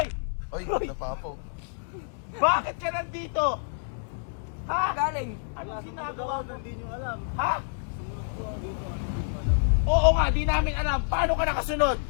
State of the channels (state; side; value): silent; right; digital silence